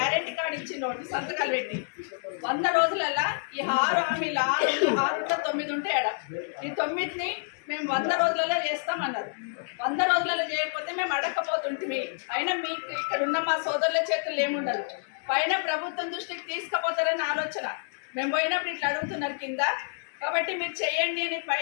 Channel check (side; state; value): right; silent; 59 dB below the other